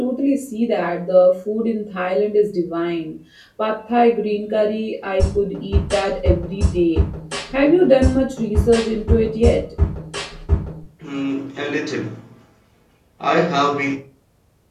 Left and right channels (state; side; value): identical; both; correlation 1.00